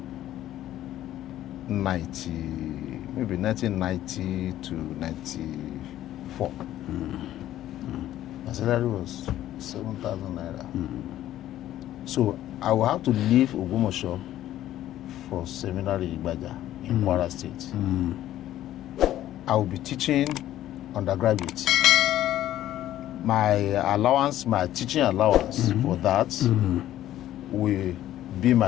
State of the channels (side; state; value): right; quieter; 13.1 dB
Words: maybe 1990 to 94. My salary was 7,000 naira. So I will have to leave Ogumosho for seminary in Ibaja in Kwara State. I will be teaching undergraduates. My allowance, my teaching allowance for that will be my